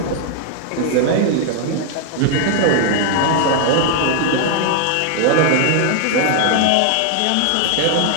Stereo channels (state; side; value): different; both; correlation 0.00